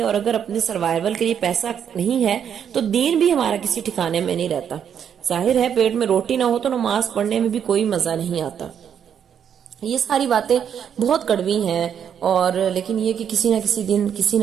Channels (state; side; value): quieter; left; 8.4 dB